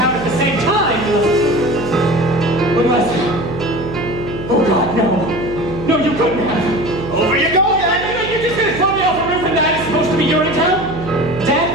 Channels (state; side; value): noise; right; hum, 11 dB below the sound